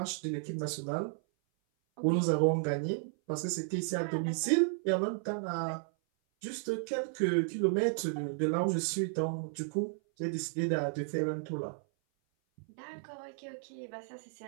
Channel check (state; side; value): silent; left; 55 dB below the other